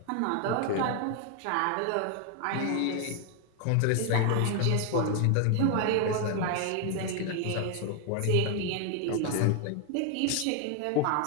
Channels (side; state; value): both; different; correlation 0.01